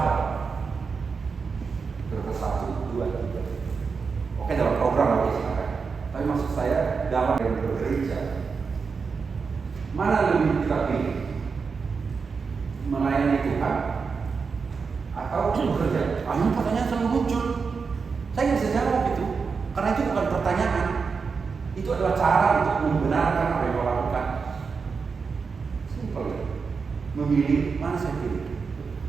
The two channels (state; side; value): quieter; left; 5.2 dB